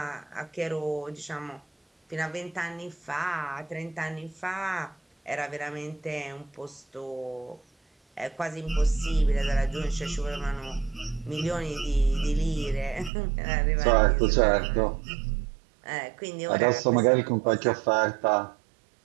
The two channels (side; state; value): left; drops out; at 13.1 s